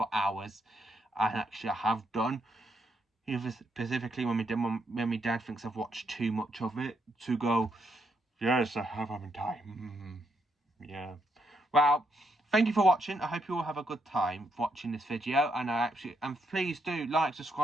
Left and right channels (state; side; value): normal; both; correlation 0.78